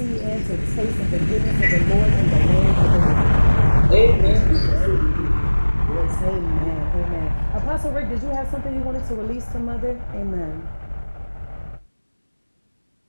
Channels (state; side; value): inverted; both; correlation -1.00